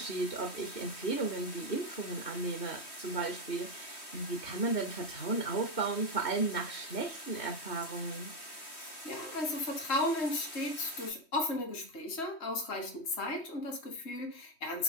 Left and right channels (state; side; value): late; right; 3.1 ms